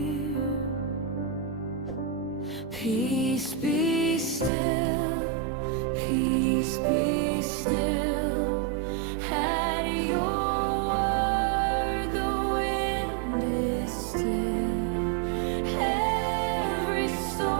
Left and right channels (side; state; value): left; drops out; at 4.5 s